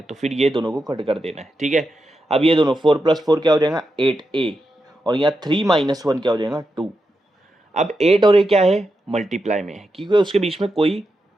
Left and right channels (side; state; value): both; normal; correlation 0.87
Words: तो फिर ये दोनों को कट कर देना है, ठीक है। अब ये दोनों 4 + 4 क्या हो जाएगा, 8a, और यहाँ 3 - 1 क्या हो जाएगा, 2। अब 8 और a क्या है, मल्टीप्लाई में है, क्योंकि उसके बीच में कोई